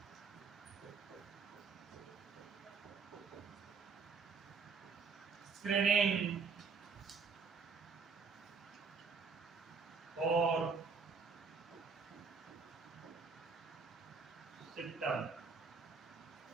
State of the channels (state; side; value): quieter; left; 5.1 dB